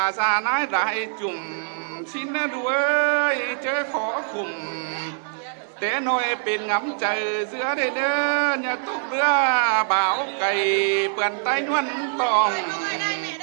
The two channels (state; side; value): silent; left; digital silence